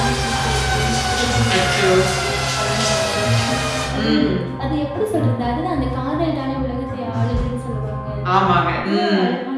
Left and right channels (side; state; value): both; identical; correlation 1.00